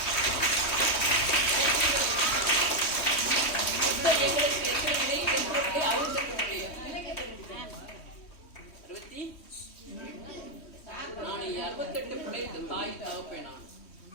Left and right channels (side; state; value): right; late; 3.2 ms